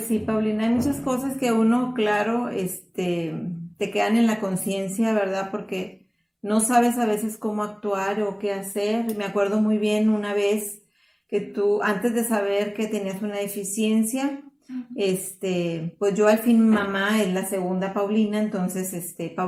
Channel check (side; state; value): both; identical; correlation 1.00